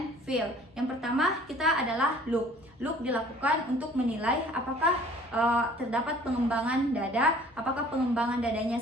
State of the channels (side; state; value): both; normal; correlation 0.52